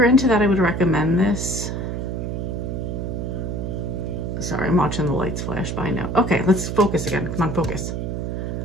into that, I would recommend this. Sorry, I'm watching the lights flash by now. Okay, let's focus again. Come on, focus.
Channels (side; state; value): right; noise; hum, 3 dB below the sound